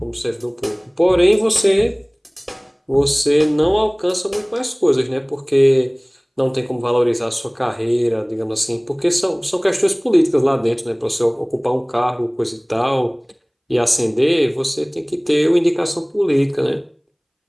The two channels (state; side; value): identical; both; correlation 1.00